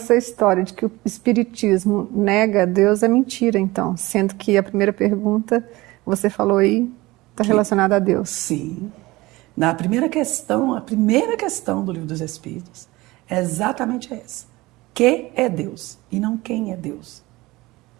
história de que o Espiritismo nega Deus é mentira, então, sendo que a primeira pergunta, você falou aí, está relacionada a Deus. Sim. Na primeira questão, a primeira questão do Livro dos Espíritos é exatamente essa. Que é Deus e não quem é Deus.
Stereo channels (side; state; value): left; quieter; 20.4 dB